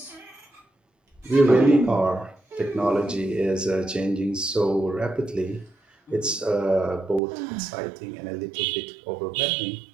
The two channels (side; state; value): left; drops out; at 7.2 s